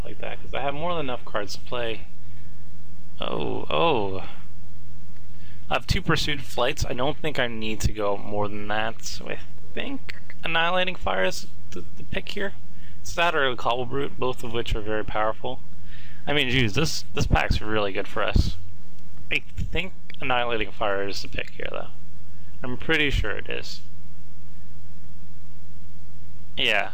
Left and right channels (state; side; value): identical; both; correlation 1.00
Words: like that, because I have more than enough cards to play. Oh. I have 2 Pursuit Flights. I don't think I need to go more than that, so I think Annihilating Fire is the pick here. It's that or a Cobble Brute, both of which are very powerful. I mean, geez, this pack's really good for us. I think Annihilating Fire is the pick here, though. I'm pretty sure it is. Yeah,